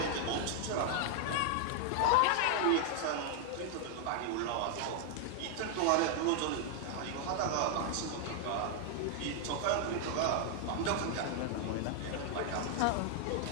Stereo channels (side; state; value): both; different; correlation 0.00